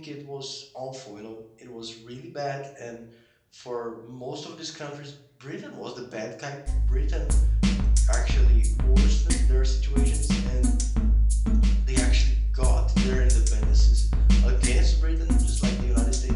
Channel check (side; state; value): both; identical; correlation 1.00